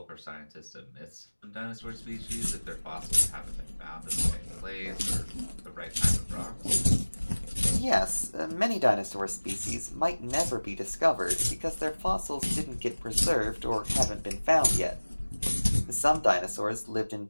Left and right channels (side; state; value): both; inverted; correlation -1.00